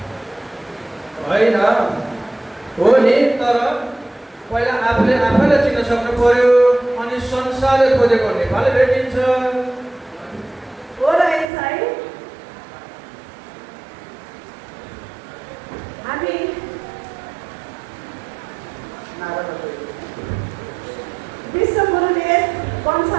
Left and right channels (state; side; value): drops out; left; at 11.5 s